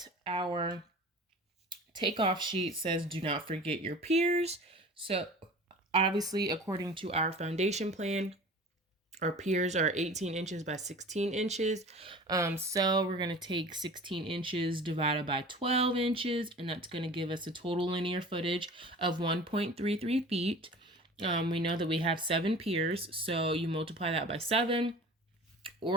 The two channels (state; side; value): normal; both; correlation 0.41